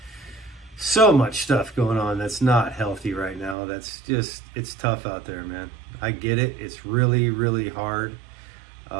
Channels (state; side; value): drops out; left; at 3.6 s